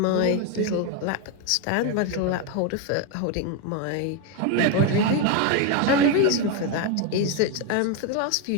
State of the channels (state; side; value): different; both; correlation 0.02